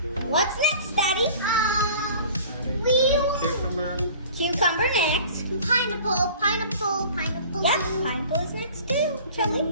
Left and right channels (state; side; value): inverted; both; correlation -0.45